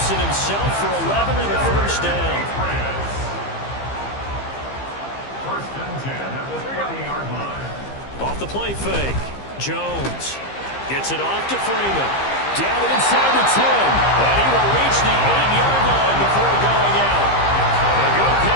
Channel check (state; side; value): late; right; 15 ms